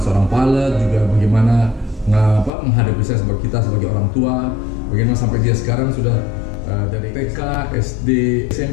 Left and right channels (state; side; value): drops out; right; at 2.5 s